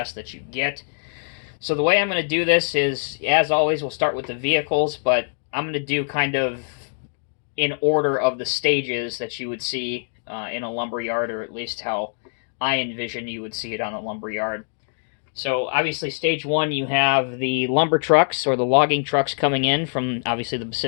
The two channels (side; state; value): right; silent; digital silence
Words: that you get. So the way I'm going to do this is, as always, we'll start with the vehicles, but I'm going to do kind of in order of the stages that you would see in a lumberyard, or at least how I envision you would see it on a lumberyard. So obviously stage 1, you have the lumber trucks or the logging trucks coming in from obviously the